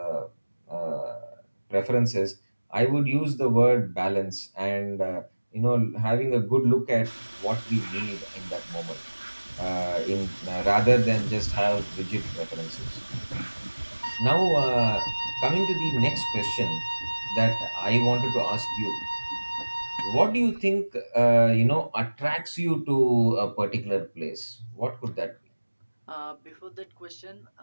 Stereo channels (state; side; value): inverted; both; correlation -1.00